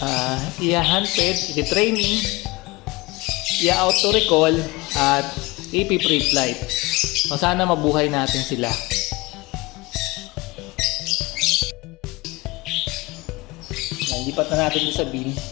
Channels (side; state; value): right; quieter; 22.5 dB